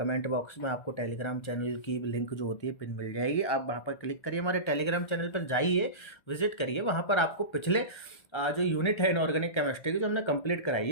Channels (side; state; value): right; late; 1.3 ms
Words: बॉक्स में आपको टेलीग्राम चैनल की लिंक जो होती है पिन मिल जाएगी, आप वहाँ पर क्लिक करिए, हमारे टेलीग्राम चैनल पर जाइए, विजिट करिए, वहाँ पर आपको पिछले जो यूनिट है इनऑर्गेनिक केमिस्ट्री की जो हमने कंप्लीट कराई